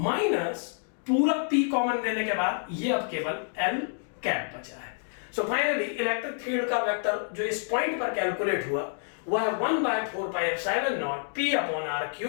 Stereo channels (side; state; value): right; silent; digital silence